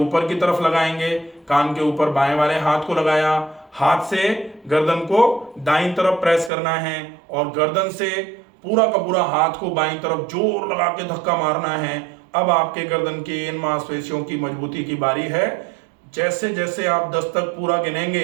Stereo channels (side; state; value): left; drops out; at 6.5 s